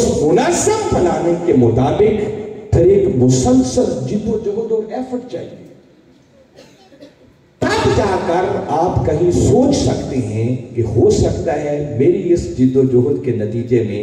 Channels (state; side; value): identical; both; correlation 1.00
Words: منظم پلاننگ کے مطابق پھر ایک مسلسل جد و جہد اور ایفرٹ چاہیے، تب جا کر آپ کہیں سوچ سکتے ہیں کہ ہو سکتا ہے میری اس جد و جہد کے نتیجے میں